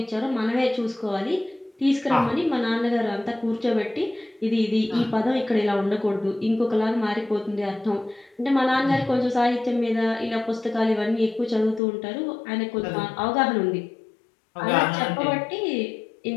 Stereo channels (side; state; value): right; drops out; at 11.8 s